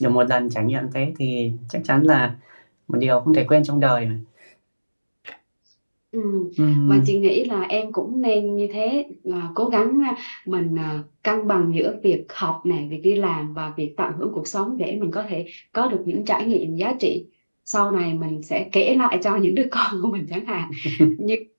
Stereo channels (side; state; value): both; inverted; correlation -1.00